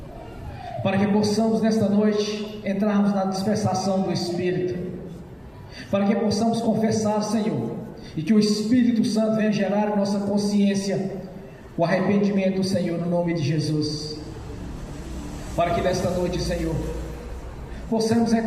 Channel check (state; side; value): identical; both; correlation 1.00